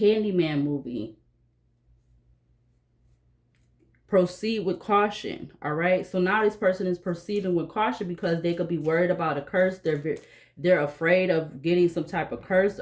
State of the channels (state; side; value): identical; both; correlation 1.00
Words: movie. Proceed with caution. All right, so now this person is proceeding with caution because they could be worried about a curse. They're afraid of getting some type of curse